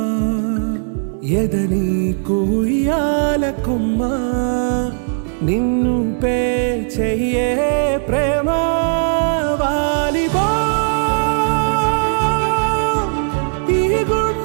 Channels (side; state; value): left; silent; 66 dB below the other